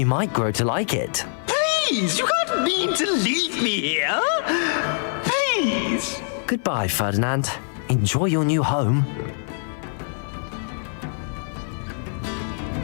might grow to like it. Please, you can't mean to leave me here. Please. Goodbye, Ferdinand. Enjoy your new home.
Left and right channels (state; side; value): silent; right; 56 dB below the other